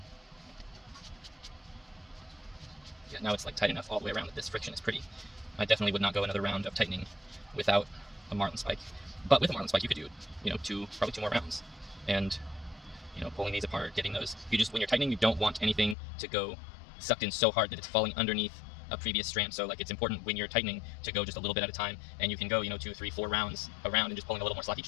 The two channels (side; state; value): right; drops out; at 16.0 s